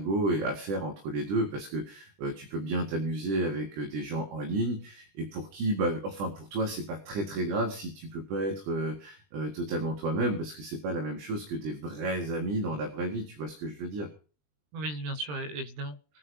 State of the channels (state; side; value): late; left; 20 ms